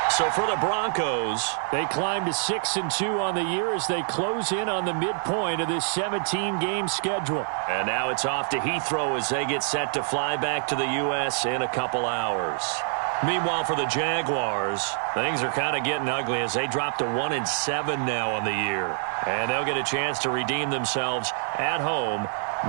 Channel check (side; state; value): left; silent; 61 dB below the other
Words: So for the Broncos, they climb to 6-2 on the year as they close in on the midpoint of this 17-game schedule. And now it's off to Heathrow as they get set to fly back to the U.S. in a couple hours. Meanwhile, for the Jaguars, things are kind of getting ugly as they drop to 1-7 now on the year. And they'll get a chance to redeem themselves at home